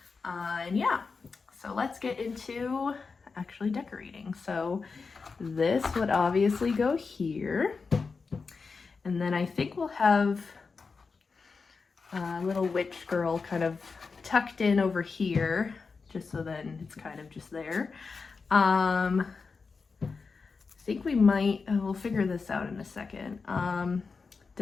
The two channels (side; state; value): right; quieter; 4.7 dB